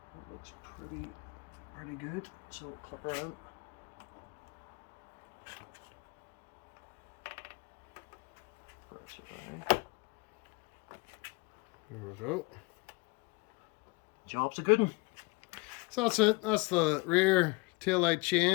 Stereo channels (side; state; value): right; quieter; 26.9 dB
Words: That looks pretty good. So clip her in. Press it down. There we go. Job's a good one. So that's it. That's the rear tail light